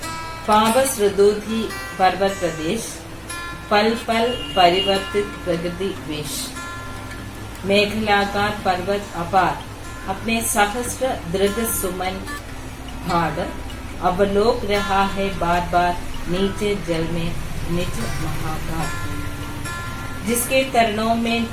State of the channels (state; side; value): identical; both; correlation 1.00